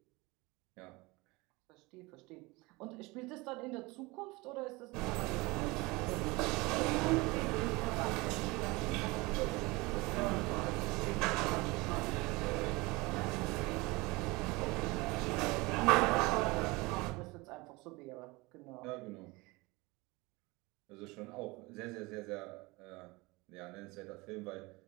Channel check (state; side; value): quieter; left; 23.8 dB